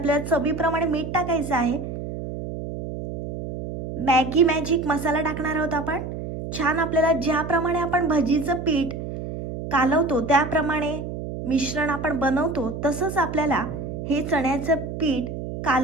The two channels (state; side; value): noise; right; hum, 7 dB below the sound